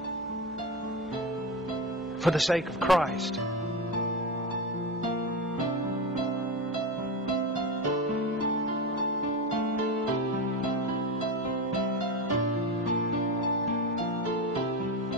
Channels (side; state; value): both; normal; correlation 0.20